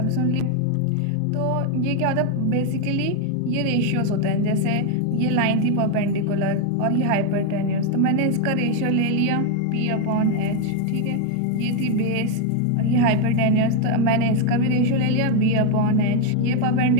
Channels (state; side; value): different; both; correlation 0.01